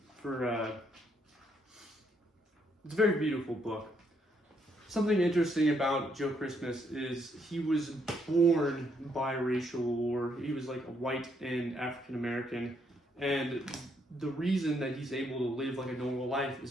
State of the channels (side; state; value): both; normal; correlation 0.73